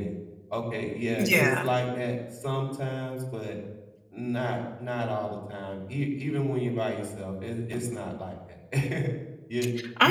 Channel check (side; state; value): both; identical; correlation 1.00